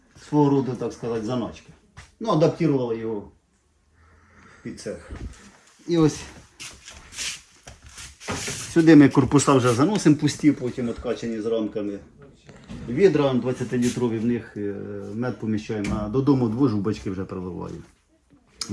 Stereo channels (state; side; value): identical; both; correlation 1.00